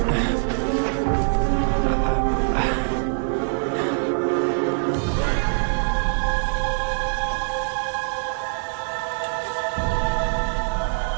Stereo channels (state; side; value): silent; left; 63 dB below the other